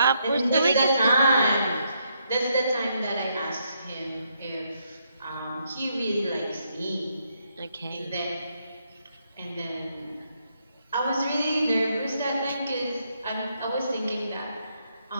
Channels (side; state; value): both; inverted; correlation -0.76